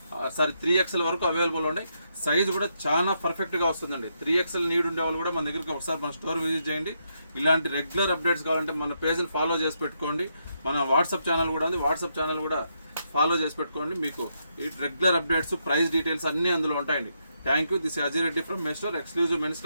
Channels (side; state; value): both; inverted; correlation -0.79